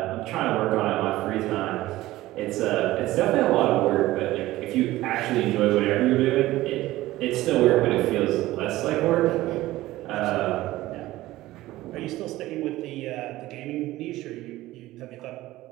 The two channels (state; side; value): quieter; left; 16.8 dB